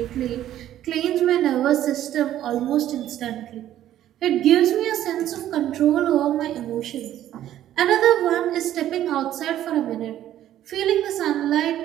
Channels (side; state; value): left; quieter; 12.2 dB